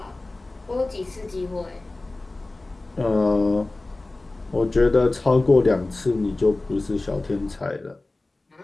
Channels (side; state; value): right; quieter; 3.0 dB